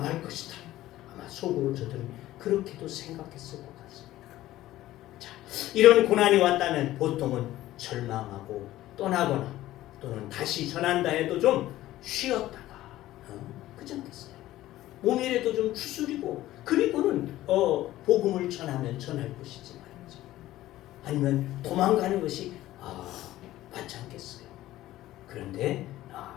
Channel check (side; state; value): right; quieter; 15.2 dB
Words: 것이다. 아마 속으로 저들은 그렇게도 생각했을 것 같습니다. 자, 이런 고난이 왔다면 보통은 절망하고 떠나거나 또는 다시 전한다 해도 좀 쉬었다가 그렇지 않겠어요? 몸이라도 좀 추스리고 그리고는 복음을 전하면 전할 것이지 말이죠. 아니면 도망가는 것이 맞지 않겠어요? 그런데